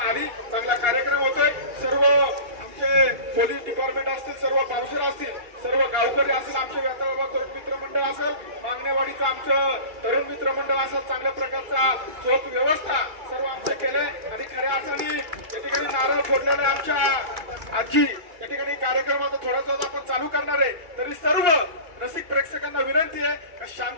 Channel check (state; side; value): late; left; 2.3 ms